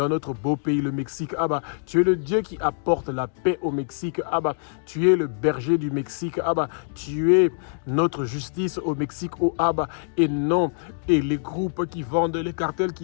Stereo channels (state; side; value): silent; right; digital silence